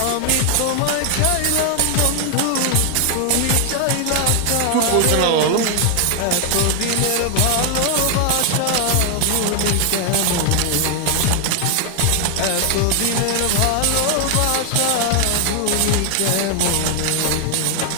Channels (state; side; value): different; both; correlation 0.00